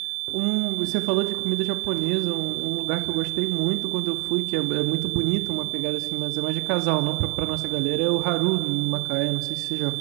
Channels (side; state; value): left; quieter; 28.1 dB